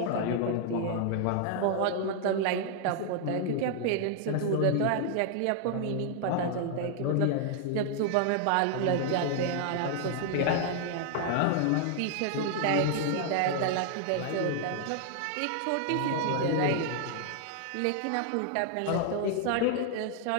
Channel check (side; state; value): both; different; correlation 0.00